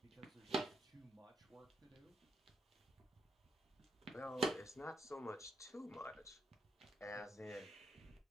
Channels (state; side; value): normal; both; correlation 0.79